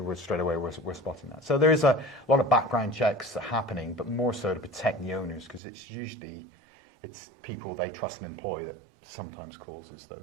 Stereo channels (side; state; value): left; drops out; at 5.6 s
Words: we're straight away we're spotting that. So there is a lot of background checks happening, but more so to protect the owners, because it's people they trust and employ that sometimes causes